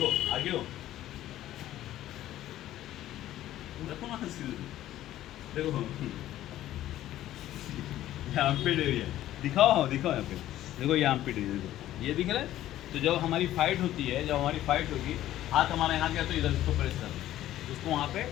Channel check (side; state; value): right; quieter; 13.5 dB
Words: आगे हो, रखो ना सीधे, देखो यहाँ पे एरिया दिखाओ, दिखाओ यहाँ पे, देखो यहाँ पे एरिया, देखो ये दिख रहा है। तो जब हमारी फाइट होती है, जब हमारी फाइट होगी, हाथ हमारा यहाँ गया तो इधर इसको प्रेस करना है, उसको वहाँ पे